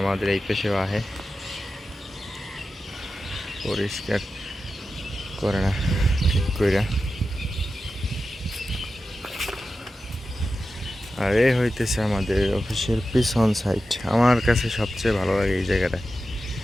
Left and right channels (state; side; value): normal; both; correlation 0.92